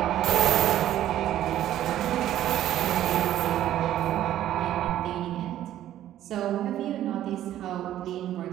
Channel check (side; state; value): left; quieter; 12.4 dB